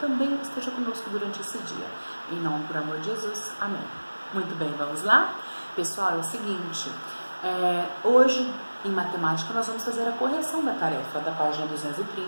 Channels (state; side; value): inverted; both; correlation -1.00